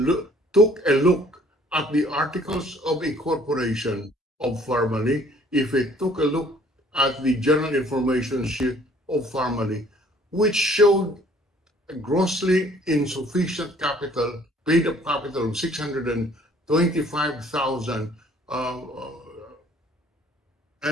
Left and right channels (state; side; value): normal; both; correlation 0.57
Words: took a look at the articles of incorporation of Pharmaly, if he took a look at the general information sheet of Pharmaly, which showed a grossly insufficient capital, paid-up capital of 625,000,